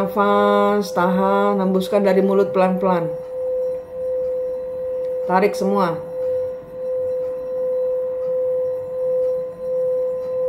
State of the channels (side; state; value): both; identical; correlation 1.00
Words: tahan, hembuskan dari mulut pelan-pelan. Tarik semua.